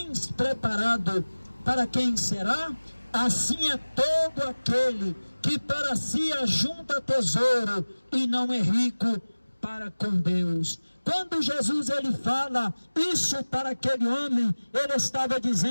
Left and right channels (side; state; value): both; inverted; correlation -1.00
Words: preparado, para quem será? Assim é todo aquele que para si ajunta tesouro e não é rico para com Deus. Quando Jesus ele fala isso para aquele homem, ele estava